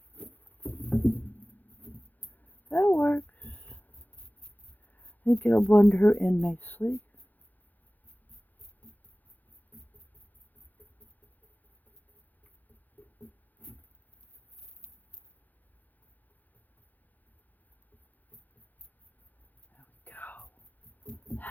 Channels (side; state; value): right; late; 0.083 ms